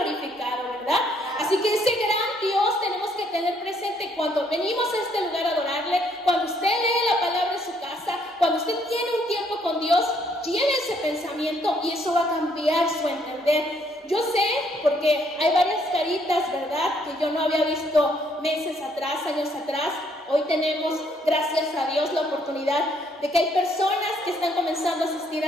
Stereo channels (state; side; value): normal; both; correlation 0.68